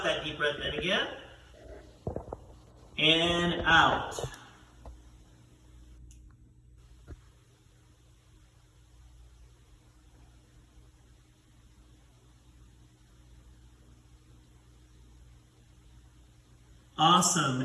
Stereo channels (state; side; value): identical; both; correlation 1.00